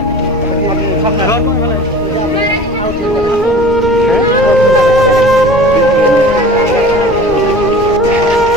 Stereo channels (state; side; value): noise; left; rumble, 14 dB below the sound